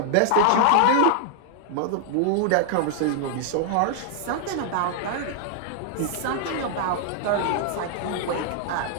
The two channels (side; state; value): both; different; correlation 0.00